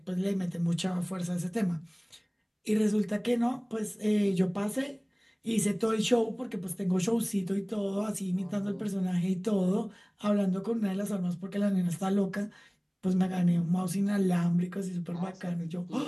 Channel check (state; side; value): identical; both; correlation 1.00